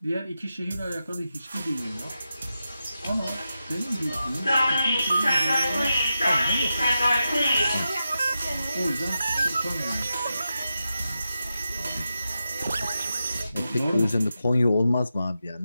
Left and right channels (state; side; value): inverted; both; correlation -0.89